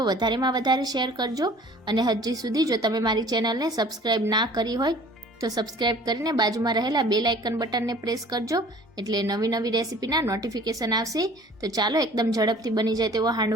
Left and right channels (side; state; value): both; normal; correlation 0.49